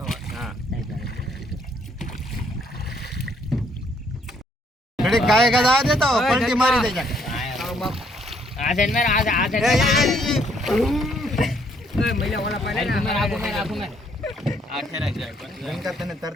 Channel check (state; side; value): normal; both; correlation 0.68